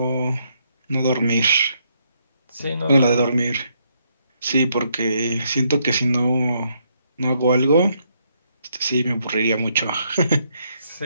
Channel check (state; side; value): inverted; both; correlation -0.74